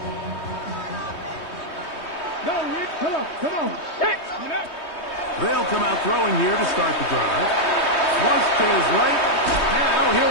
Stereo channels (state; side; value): late; right; 3.2 ms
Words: Come on. Set. They'll come out throwing here to start the drive. Flush to his right. Now